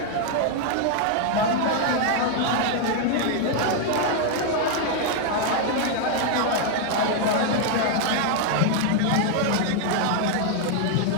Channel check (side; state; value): both; different; correlation 0.00